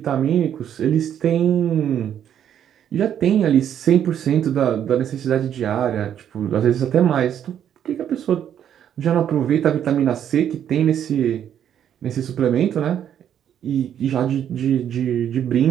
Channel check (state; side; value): quieter; left; 9.7 dB